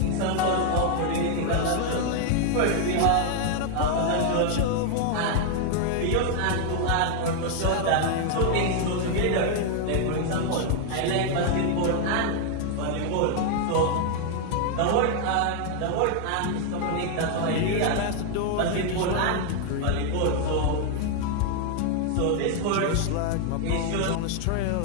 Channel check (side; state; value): both; different; correlation 0.00